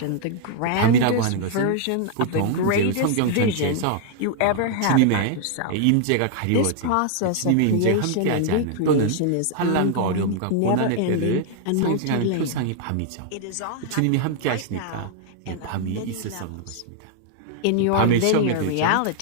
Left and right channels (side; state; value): both; different; correlation 0.00